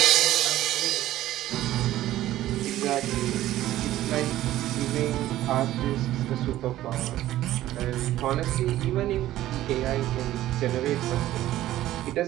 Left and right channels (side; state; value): left; quieter; 14.3 dB